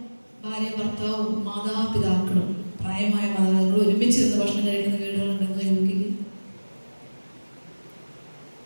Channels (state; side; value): inverted; both; correlation -1.00